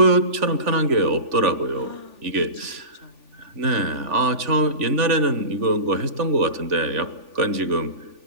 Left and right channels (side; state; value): left; late; 3.4 ms